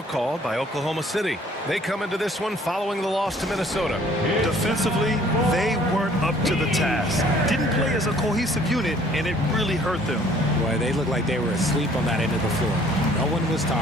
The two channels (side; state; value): both; normal; correlation 0.57